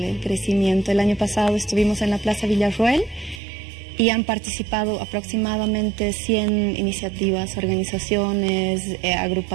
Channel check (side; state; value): left; drops out; at 3.4 s